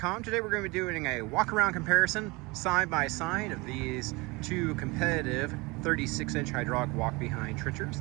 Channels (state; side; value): quieter; left; 25.2 dB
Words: Today we're going to be doing a walk-around comparison side by side of these two competitive 36-inch hydraulic walk-behind